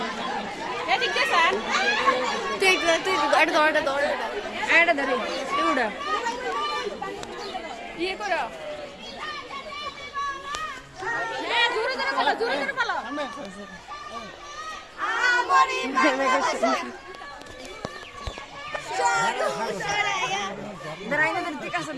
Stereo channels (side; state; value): both; identical; correlation 1.00